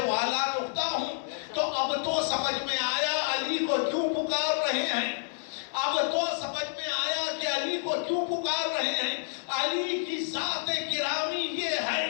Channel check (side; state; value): right; silent; digital silence